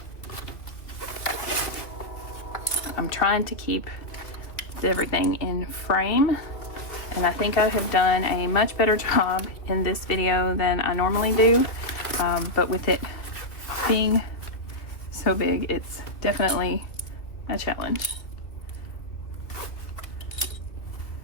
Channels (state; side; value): late; right; 2.2 ms